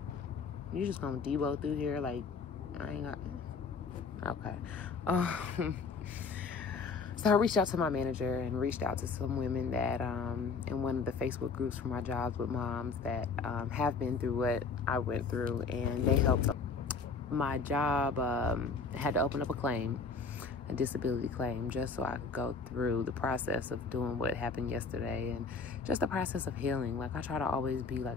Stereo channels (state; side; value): quieter; right; 4.7 dB